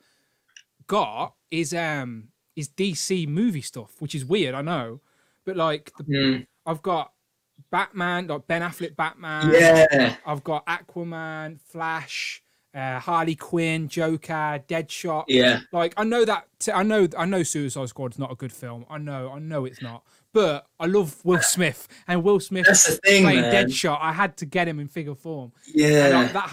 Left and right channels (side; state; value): both; identical; correlation 1.00